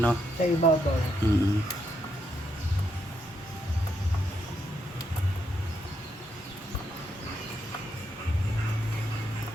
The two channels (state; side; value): normal; both; correlation 0.78